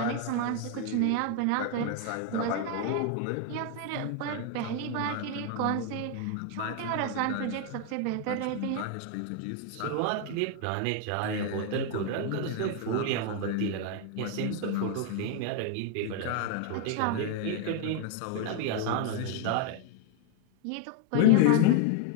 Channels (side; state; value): both; different; correlation 0.01